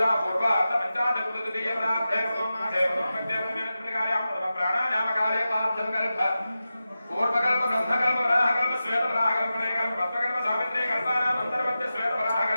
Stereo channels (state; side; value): inverted; both; correlation -0.93